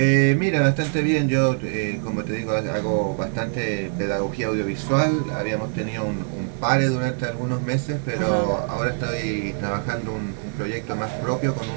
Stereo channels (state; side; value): silent; left; 61 dB below the other